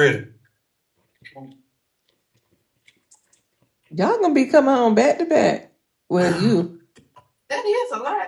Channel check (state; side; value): identical; both; correlation 1.00